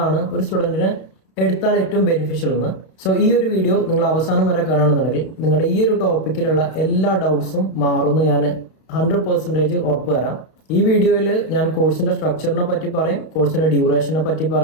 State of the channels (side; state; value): right; late; 32 ms